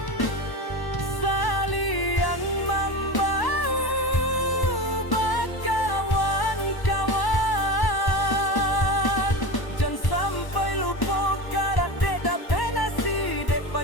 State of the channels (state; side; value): late; right; 1.1 ms